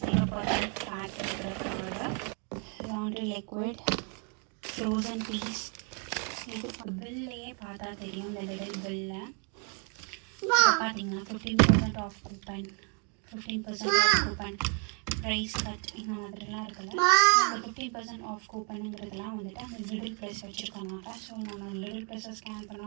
0% ஃபேட் இருக்கிற curd. Laundry liquid, frozen peas. இது பில்லையே பார்த்தா தெரியும். இந்த லிட்டில் பில்லில் பார்த்தீங்கன்னா 15% off coupon, 15% off coupon, price cut இந்த மாதிரிலாம் இருக்குல்ல, அந்த 50% ஆஃப் கூப்பனுங்கிறதுலாம் வந்துட்டு அந்த லிட்டில் ப்ரைஸ் வச்சுருக்காங்க. ஸோ நம்ம லிட்டில் ப்ரைஸை ஸ்கேன்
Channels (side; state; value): left; quieter; 36.3 dB